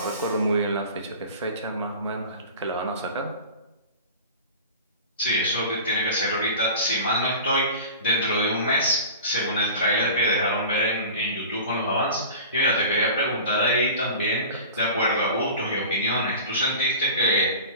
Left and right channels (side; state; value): both; inverted; correlation -0.37